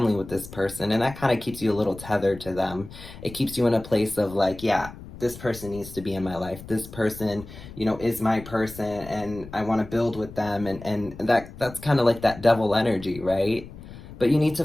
with this person, and that kind of keeps you a little tethered to them. It keeps you in a place of, like, yeah, this person needs to be in my life. This person, you know, is my person, and I want to build with them. And that's kind of like that devil energy, right? But you need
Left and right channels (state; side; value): noise; left; rumble, 15 dB below the sound